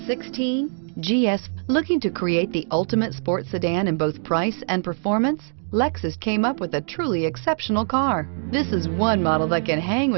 GS. Looking to create the ultimate sports sedan in both price and performance? Lexus came up with a truly exceptional car. This is one model that can hang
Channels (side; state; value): left; silent; 63 dB below the other